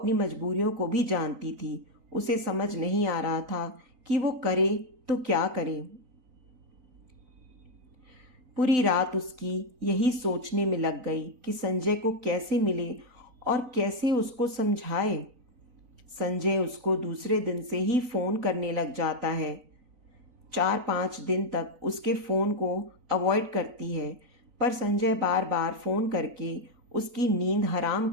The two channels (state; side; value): late; left; 3.9 ms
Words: मजबूरियों को भी जानती थी। उसे समझ नहीं आ रहा था कि वो करे तो क्या करे। पूरी रात उसकी यही सोचने में लग गई कि संजय को कैसे मिले और कैसे उसको समझाए। संजय उसको दूसरे दिन से ही फ़ोन करने लग जाता है। 4-5 दिन तक उसके फ़ोन को अवॉइड करती है, पर संजय बार बार फ़ोन करके उसकी नींद हराम